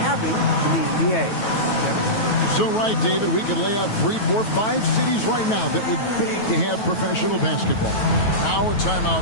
having in the NBA. Kevin? You're so right, David. We could lay out 3, 4, 5 cities right now that would beg to have professional basketball. Now a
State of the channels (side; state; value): right; late; 9.2 ms